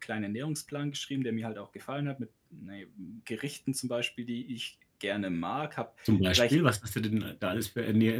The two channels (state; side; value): identical; both; correlation 1.00